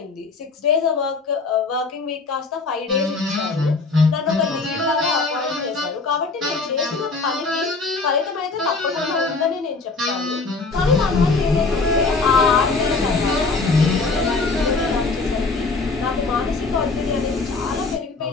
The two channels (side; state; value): right; quieter; 3.9 dB